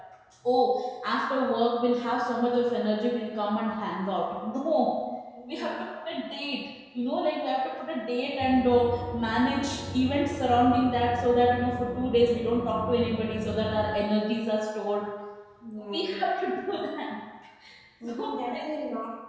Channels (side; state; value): both; identical; correlation 1.00